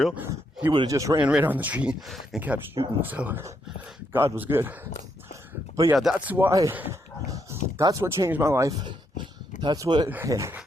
he would have just ran right on the tree and kept shooting. So God was good. But yeah, that's what changed my life. That's what, hey,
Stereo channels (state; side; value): normal; both; correlation 0.77